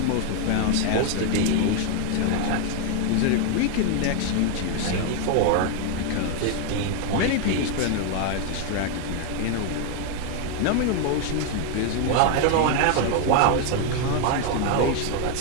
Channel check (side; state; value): both; different; correlation 0.01